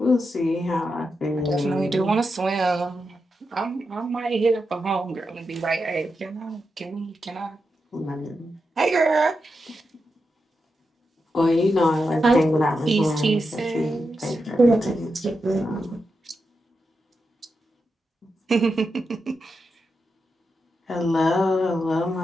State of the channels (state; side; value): normal; both; correlation 0.87